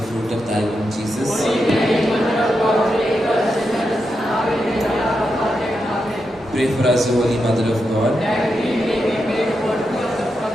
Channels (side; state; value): both; normal; correlation 0.86